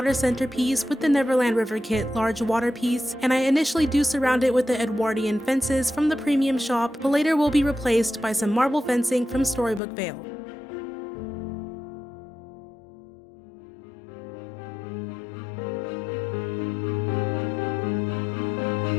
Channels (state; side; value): drops out; right; at 9.8 s